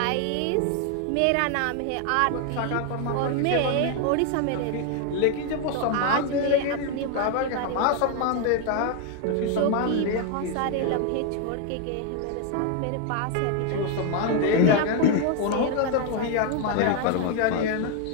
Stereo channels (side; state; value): both; different; correlation 0.01